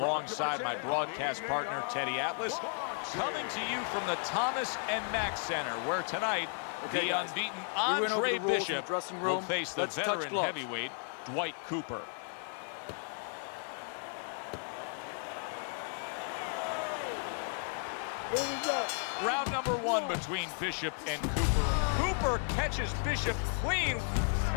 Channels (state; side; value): silent; right; 55 dB below the other